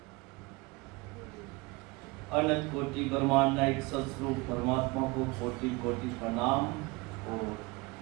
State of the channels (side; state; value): left; quieter; 24.5 dB